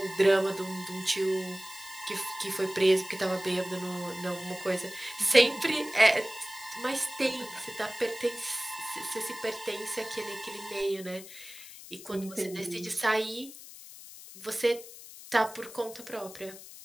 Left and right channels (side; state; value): left; noise; hiss, 15 dB below the sound